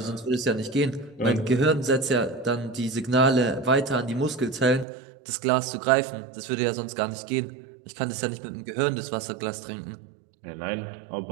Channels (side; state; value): left; drops out; at 4.9 s